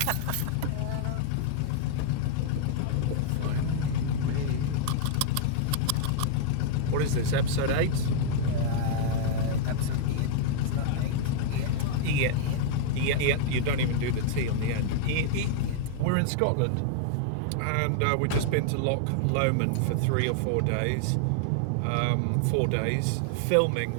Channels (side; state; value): both; different; correlation 0.00